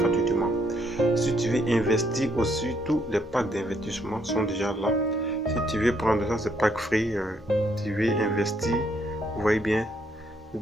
Si tu veux investir aussi, tous les packs d'investissement sont déjà là. Si tu veux prendre ça, c'est pack free. Tu veux investir, vous voyez bien, vous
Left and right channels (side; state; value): both; normal; correlation 0.71